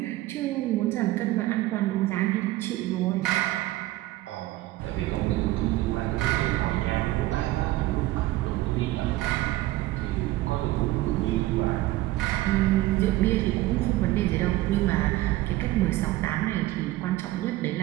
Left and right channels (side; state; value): left; quieter; 17.0 dB